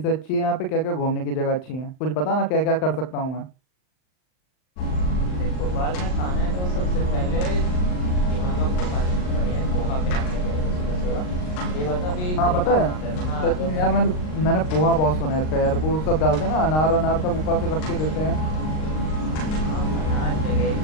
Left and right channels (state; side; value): late; right; 39 ms